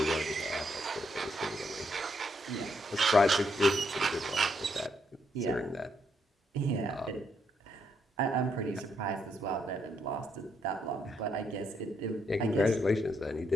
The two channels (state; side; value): normal; both; correlation 0.76